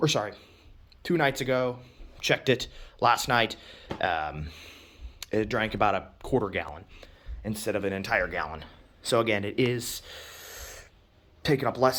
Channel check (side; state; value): both; identical; correlation 1.00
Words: 2 nights ago. Checked it last night. It drank about a quarter gallon instead of an entire gallon. So again, it is taking up